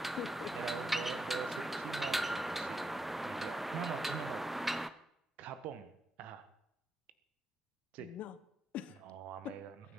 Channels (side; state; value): both; normal; correlation 0.83